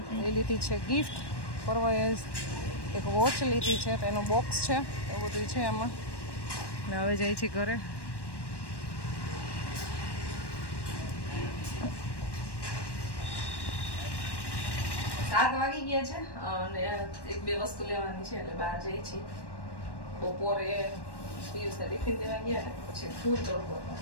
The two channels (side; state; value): right; late; 1.1 ms